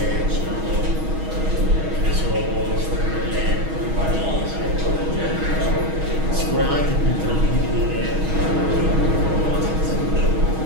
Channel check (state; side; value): late; left; 6.3 ms